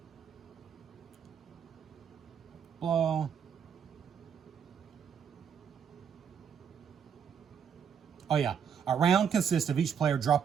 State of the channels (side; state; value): left; quieter; 7.5 dB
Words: blah. Oh yeah, a round consists of each player